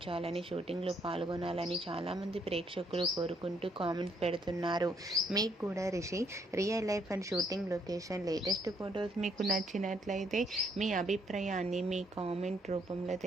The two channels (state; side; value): normal; both; correlation 0.70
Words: షూటింగ్లో పాల్గొనాలని చాలామంది ప్రేక్షకులు కోరుకుంటూ కామెంట్స్ పెడుతున్నారు. మీకు కూడా Rishi real life and shooting location latest photos మీకు నచ్చినట్లయితే మీ అభిప్రాయాన్ని మీ కామెంట్ రూపంలో